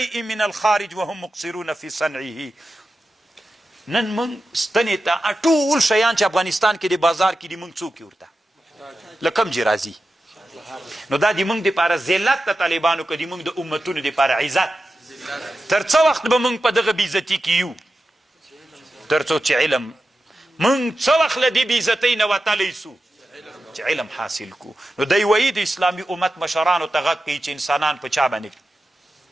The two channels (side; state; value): both; normal; correlation 0.92